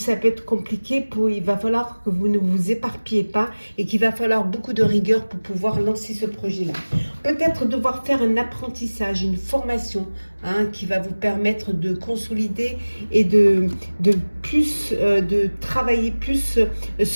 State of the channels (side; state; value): both; inverted; correlation -1.00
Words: peut être compliqué il va falloir que vous ne vous éparpillez pas et qu'il va falloir beaucoup de rigueur pour pouvoir lancer ce projet-là. Peut-être devoir faire un apprentissage, une formation, hein, qui va vous permettre de consolider et de travailler plus